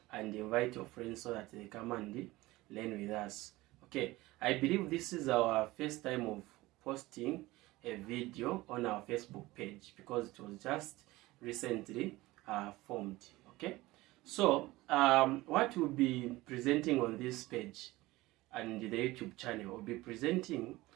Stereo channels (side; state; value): left; quieter; 19.3 dB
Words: and invite your friends so that they come and learn with us. Okay, I believe this is our first time of posting a video on our Facebook page because it was just recently formed. Okay, so what we'll be presenting on this page and the YouTube channel, will be presenting